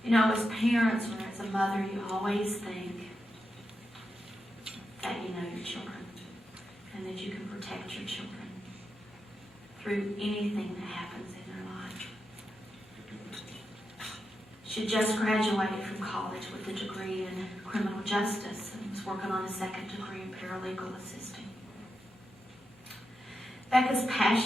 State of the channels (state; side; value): normal; both; correlation 0.87